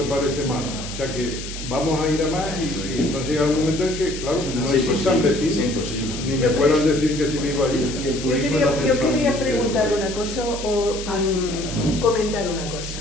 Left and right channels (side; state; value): left; noise; hiss, 10 dB below the sound